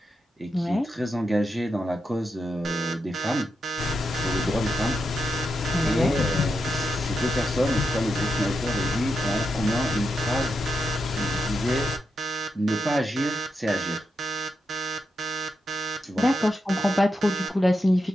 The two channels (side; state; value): both; normal; correlation 0.85